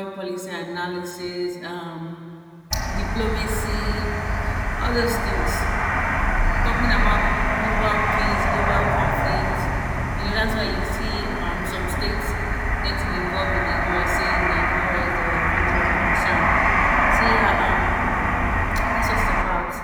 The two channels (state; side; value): identical; both; correlation 1.00